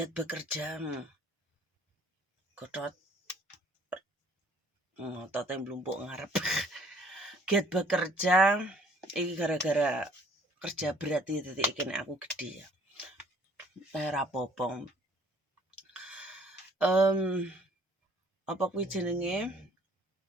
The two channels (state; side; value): normal; both; correlation 0.58